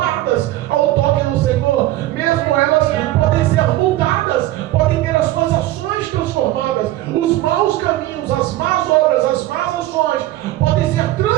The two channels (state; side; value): quieter; left; 15.8 dB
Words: ao toque do Senhor, mesmo elas podem ser mudadas, podem ter as suas ações transformadas, os maus caminhos, as más obras, as más ações podem ser